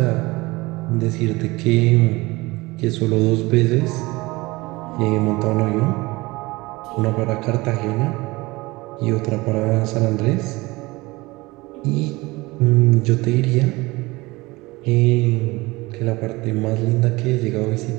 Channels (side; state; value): left; quieter; 22.1 dB